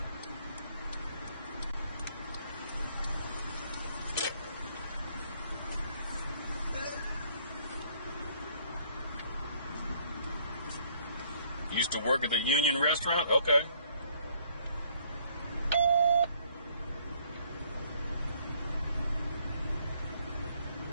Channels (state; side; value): inverted; both; correlation -0.64